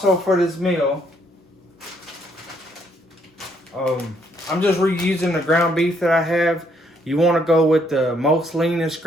for this meal, I'm just reusing the ground beef that I have. You want to go with the most leanest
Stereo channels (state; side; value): normal; both; correlation 0.70